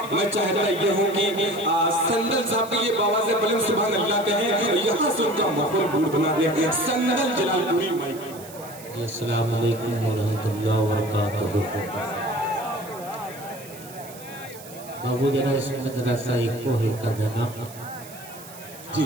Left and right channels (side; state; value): right; noise; hiss, 17 dB below the sound